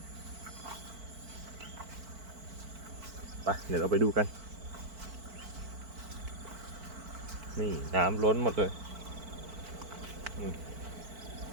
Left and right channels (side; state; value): left; late; 4.5 ms